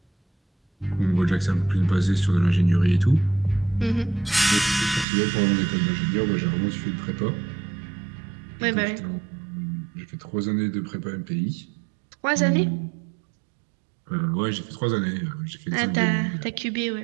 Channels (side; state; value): left; drops out; at 5.1 s